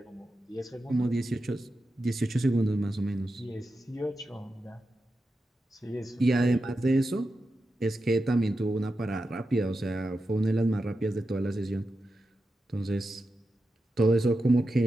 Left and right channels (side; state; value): both; normal; correlation 0.90